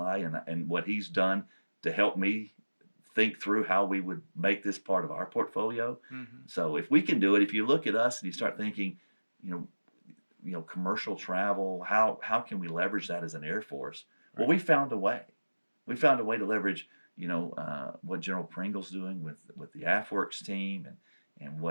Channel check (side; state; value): both; inverted; correlation -1.00